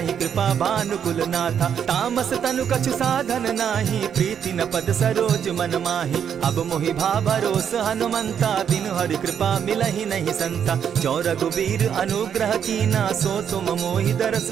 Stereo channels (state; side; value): quieter; left; 8.3 dB